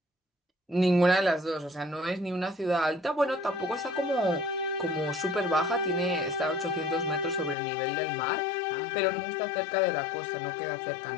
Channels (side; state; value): right; drops out; at 7.6 s